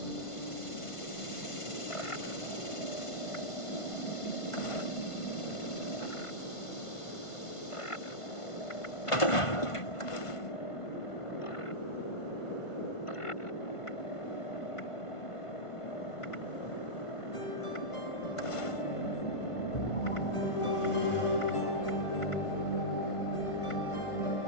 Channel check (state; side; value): late; right; 1.5 ms